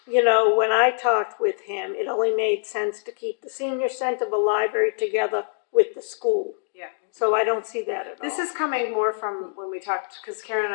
when I talked with him, it only made sense to keep the senior center, the library together with the school. Yeah. So I don't see that at all. This is coming more from when we talked, because Karen and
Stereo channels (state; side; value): silent; right; digital silence